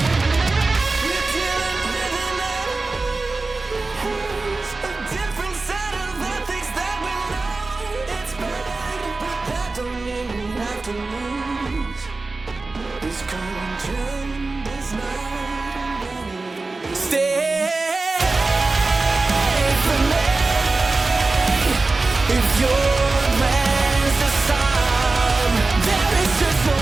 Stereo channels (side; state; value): left; quieter; 3.5 dB